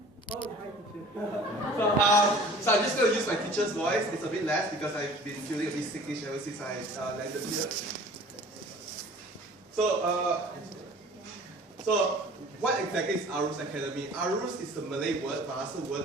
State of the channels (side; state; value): both; normal; correlation 0.46